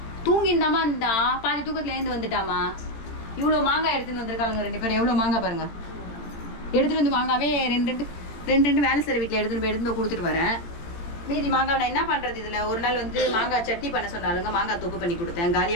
தூங்கிந்தாமா இருந்தா பாதி தூக்கத்துல எழுந்து வந்துட்டாமா. இவ்வளவு மாங்காய் எடுத்துன்னு வந்திருக்காங்க 2 பேரும். எவ்வளவு மாங்காய் பாருங்க. எடுத்துட்டு வந்து மாங்காவே 2 வேலை செய்ற வீட்டுல எடுத்துட்டு கொடுத்துட்டு வரேன். மீதி மாங்காய் நான் என்ன பண்றது? இதுல ஒரு நாள் வந்து மாங்காய் சட்னி பண்ண சொன்னாலுங்க, மாங்காய் தொக்கு பண்ணி கொடுத்தேன்.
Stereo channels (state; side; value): late; right; 18 ms